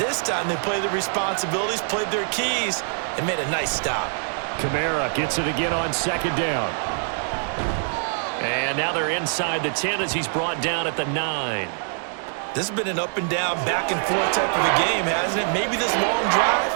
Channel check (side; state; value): left; silent; 63 dB below the other